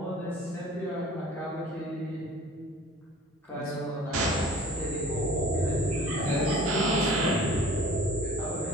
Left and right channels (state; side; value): normal; both; correlation 0.46